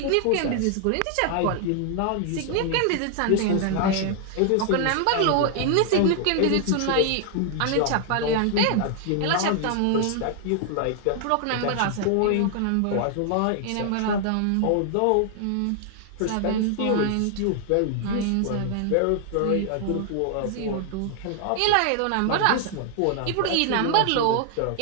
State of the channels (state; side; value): different; both; correlation 0.00